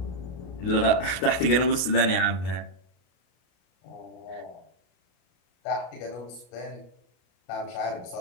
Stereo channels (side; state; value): right; late; 33 ms